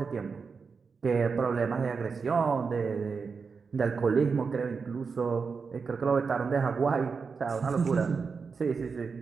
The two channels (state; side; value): quieter; left; 5.2 dB